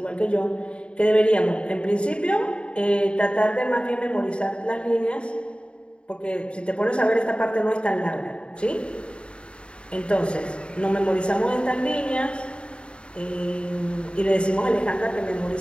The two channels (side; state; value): right; late; 0.055 ms